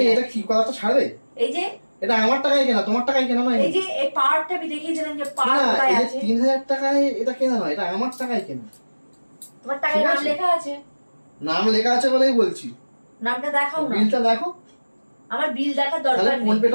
এটা যাচ্ছি। কি কথাটা ছাড়বে? এই যে এটা আমার টাকায় কেনা, তোমার টাকায় কেনা নয়। এই যে এই পার্টটা আমি দেখিয়েছিলাম যে পার্ট না, কোথায় এই যে আছে। 3,000 টাকায় এটা কেনা নয়, এটা আমার টাকায় কেনা। তোমার টাকায় ঠিক নাম আছে। লেখা আছে, নাম লেখা আছে বলেই বলছি। নামটা দেখাও না। বিলটা দেখো, আমার বিল দেখার তাহলে দরকার ফোন নেই,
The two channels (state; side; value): inverted; both; correlation -1.00